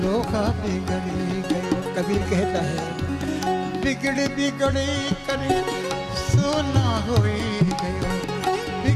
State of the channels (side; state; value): both; identical; correlation 1.00